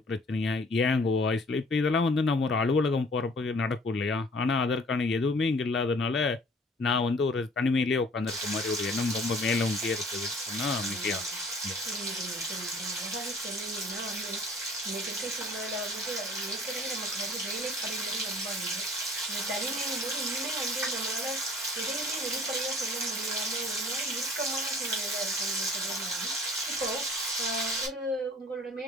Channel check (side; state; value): both; normal; correlation 0.52